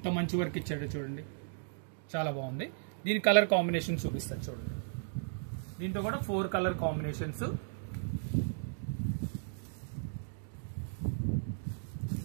మంచి వర్క్ ఇచ్చాడు చూడండి, చాలా బాగుంది. దీని కలర్ కాంబినేషన్ చూపిస్తాను చూడండి. దీంట్లో కూడా 4 కలర్ కాంబినేషన్స్.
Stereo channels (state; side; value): silent; left; digital silence